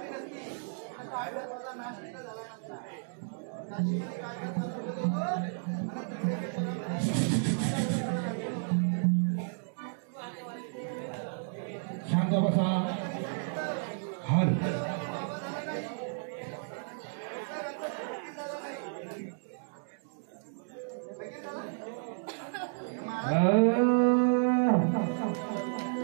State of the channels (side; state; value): left; silent; digital silence